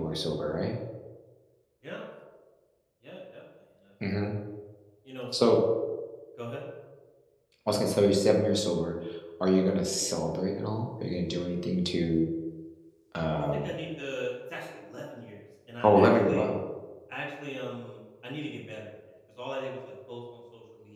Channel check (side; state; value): both; identical; correlation 1.00